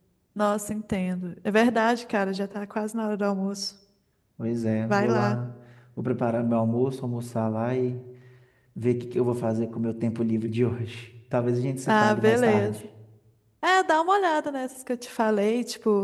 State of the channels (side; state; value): both; identical; correlation 1.00